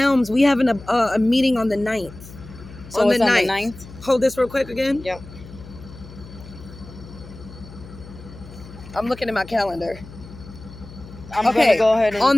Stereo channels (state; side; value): noise; left; hum, 17 dB below the sound